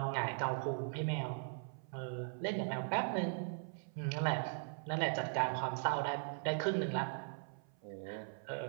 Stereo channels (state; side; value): silent; left; 51 dB below the other